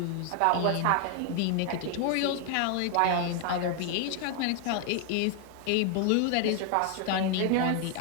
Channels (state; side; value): different; both; correlation 0.00